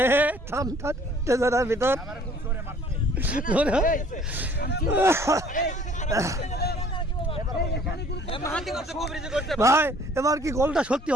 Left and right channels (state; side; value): normal; both; correlation 0.56